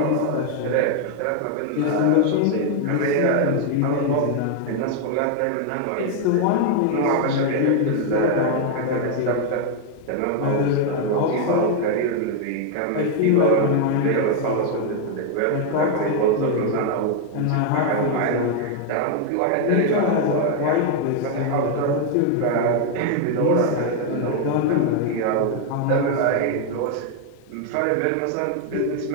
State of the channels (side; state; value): both; different; correlation 0.00